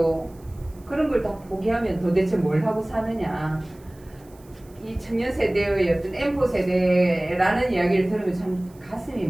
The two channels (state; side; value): noise; right; hiss, 29 dB below the sound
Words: 그런 걸 다 포기하면 도대체 뭘 하고 사느냐. 이 청년 세대의 어떤 N포 세대라는 이야기를 들으면 참 가슴이